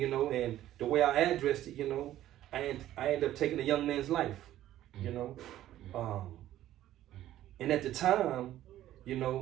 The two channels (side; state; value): left; quieter; 13.3 dB